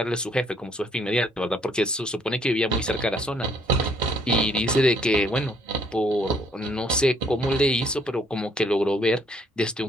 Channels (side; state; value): both; normal; correlation 0.65